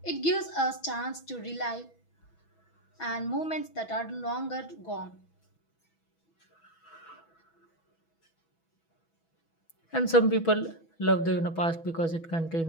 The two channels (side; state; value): right; late; 6.1 ms